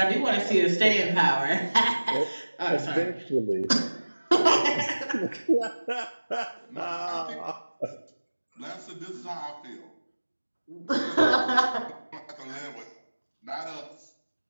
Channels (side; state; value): both; inverted; correlation -1.00